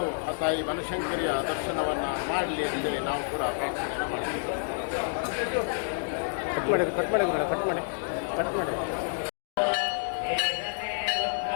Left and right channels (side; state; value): right; silent; digital silence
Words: ಆ ತಾಯಿ ಬನಶಂಕರಿಯ ದರ್ಶನವನ್ನು ಮಾಡಲಿ ಅಂತೇಳಿ ನಾವು ಕೂಡ ಪ್ರಾರ್ಥನೆಯನ್ನು ಮಾಡ್ತೀವಿ. ಕಟ್ ಮಾಡಿ.